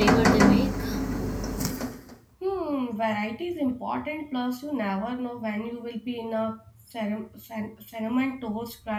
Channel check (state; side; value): identical; both; correlation 1.00